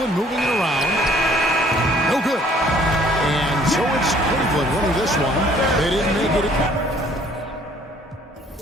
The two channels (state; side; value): normal; both; correlation 0.58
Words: moving it around. No good. And so it's Cleveland winning this one. They didn't make it.